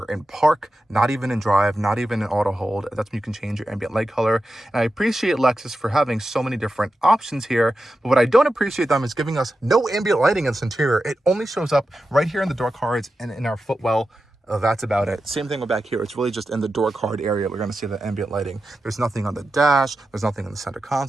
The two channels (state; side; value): normal; both; correlation 0.91